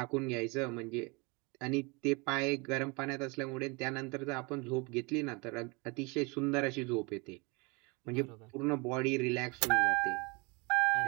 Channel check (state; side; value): quieter; left; 28.4 dB